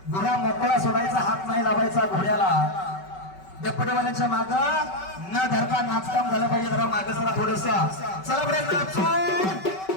घोडा मोकळा सोडायचा, हात नाही लावायचा घोड्याला. डप्पटेवाल्यांच्या माग न धरता नाचकाम झालं पाहिजे. जरा माग जरा थोडस चला बरे नाचू.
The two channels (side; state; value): right; late; 5.3 ms